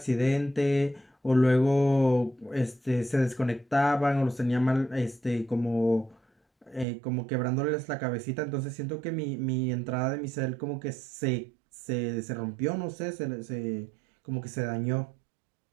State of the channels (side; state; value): left; drops out; at 6.9 s